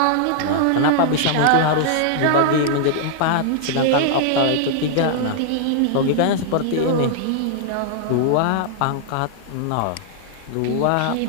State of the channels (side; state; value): both; different; correlation -0.01